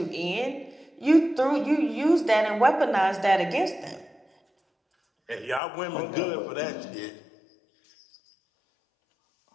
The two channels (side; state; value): right; drops out; at 5.6 s